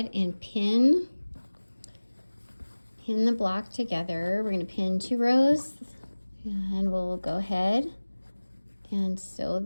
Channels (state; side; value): inverted; both; correlation -1.00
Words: and pin the block together. We're going to pin 2 rows, and we'll go ahead and sew